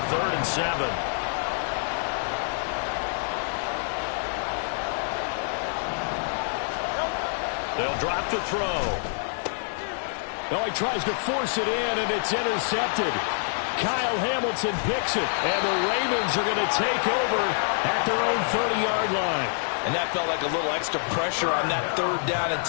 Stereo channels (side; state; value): right; silent; digital silence